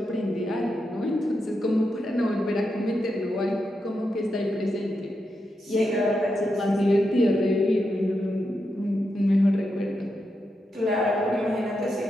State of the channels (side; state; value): both; normal; correlation 0.86